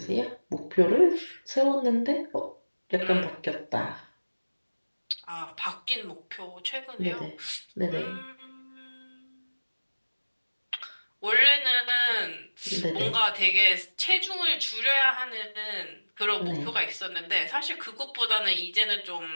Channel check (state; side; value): inverted; both; correlation -1.00